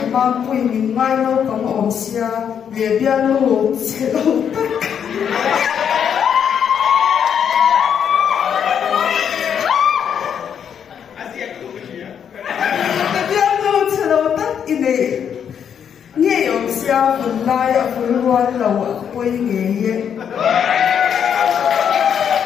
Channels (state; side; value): quieter; right; 8.1 dB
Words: mang quỳ mình ngay đâu có một ông xia để bia lô sẽ đâu tất nghe ông xia vun lai ở vun loan lầu ở quê nghề ye